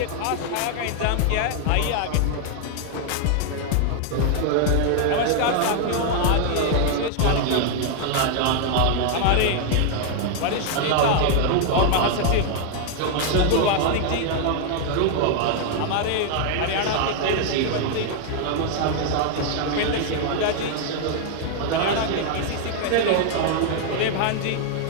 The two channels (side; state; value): both; different; correlation 0.00